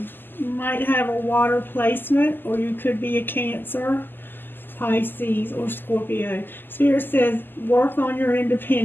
You might have a water placement, or you could be a Cancer, Pisces, or Scorpio. Spirit says work on your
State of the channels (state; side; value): late; right; 0.094 ms